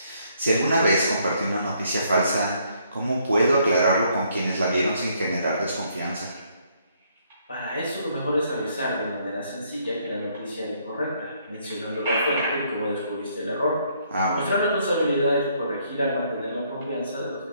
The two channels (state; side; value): inverted; both; correlation -0.69